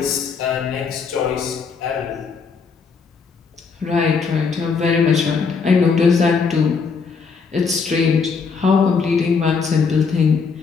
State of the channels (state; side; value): quieter; right; 5.3 dB